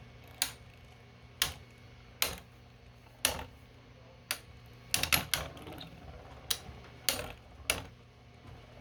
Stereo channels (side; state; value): both; identical; correlation 1.00